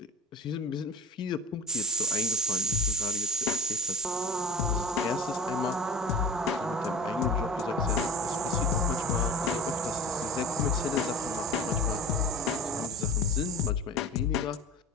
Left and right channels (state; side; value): normal; both; correlation 0.34